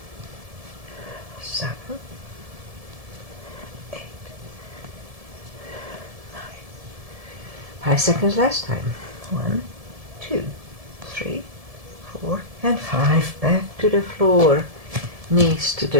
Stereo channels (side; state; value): left; late; 1.7 ms